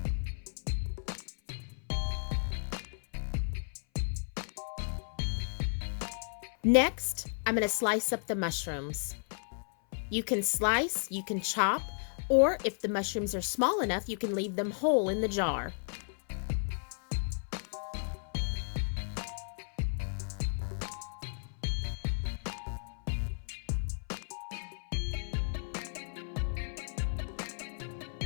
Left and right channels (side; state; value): right; silent; 55 dB below the other